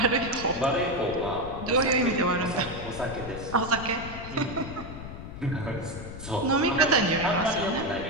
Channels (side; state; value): left; noise; rumble, 11 dB below the sound